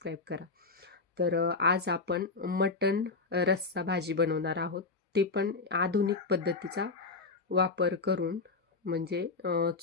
करा. तर आज आपण मटण रस्सा भाजी बनवणार आहोत. ते पण आधुनिक पद्धतीचा वापर करून, म्हणजे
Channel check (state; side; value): quieter; right; 4.1 dB